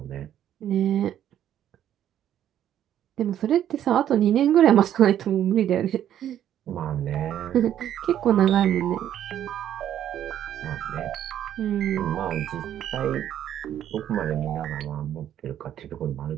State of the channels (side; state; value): left; quieter; 10.8 dB